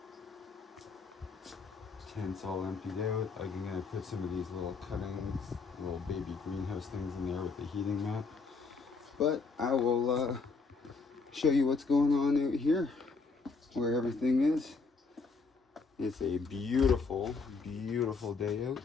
Tent's all emptied out. I'm gonna put some of these little cuttings, little baby greenhouse things in there with the heating mat. But I will show you what's going on out here, where everything is. It's a beautiful, beautiful day out.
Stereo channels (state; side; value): quieter; right; 4.4 dB